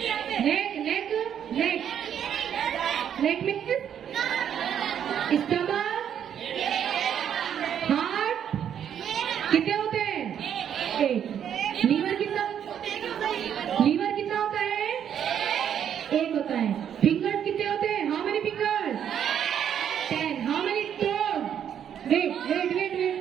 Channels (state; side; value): quieter; left; 9.1 dB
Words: नेक मीन्स स्टमक, हार्ट कितने होते हैं? एक। लीवर कितना होता है? एक होता है। फिंगर्स कितने होते हैं? How many fingers? 10। How many toes? Wait,